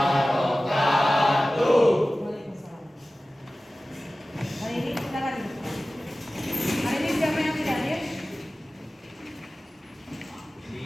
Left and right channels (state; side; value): normal; both; correlation 0.97